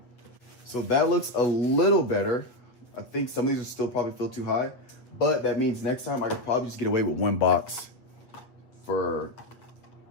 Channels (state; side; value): late; right; 8.2 ms